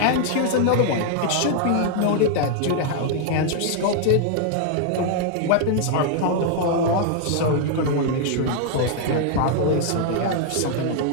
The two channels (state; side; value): different; both; correlation 0.00